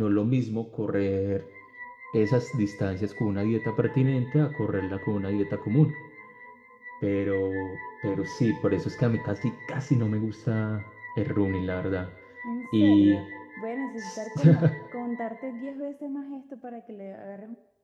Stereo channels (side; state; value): both; identical; correlation 1.00